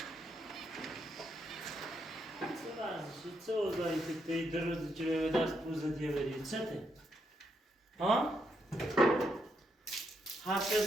چه اوضاعی که توی 2 روز که به دست پوزه دیگه برید چه ته؟ ها؟ حرف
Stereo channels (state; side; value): normal; both; correlation 0.79